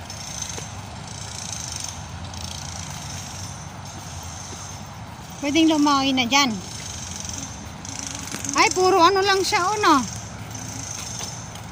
Pwedeng lumawi na dyan. Ay, puro ano lang siya, no?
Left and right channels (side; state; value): both; identical; correlation 1.00